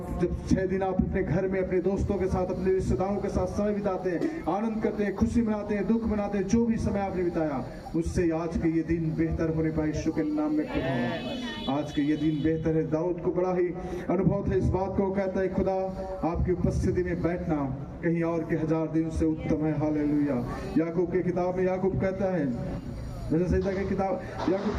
जब 6 दिन आप अपने घर में अपने दोस्तों के साथ, अपने रिश्तेदारों के साथ समय बिताते हैं, आनंद करते हैं, खुशी मनाते हैं, दुख मनाते हैं, जो भी समय आपने बिताया, उससे आज के ये दिन बेहतर होने पाए। यीशु के नाम में खुदा, आज के ये दिन बेहतर है। दाऊद को बड़ा ही अनुभव था इस बात को। कहता है, खुदा आपकी उपस्थिति में बैठना कहीं और के 1000 दिन से उत्तम है। हालेलुया। याकूब की किताब में याकूब कहता है, वचन संहिता की किताब, याकूब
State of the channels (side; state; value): both; identical; correlation 1.00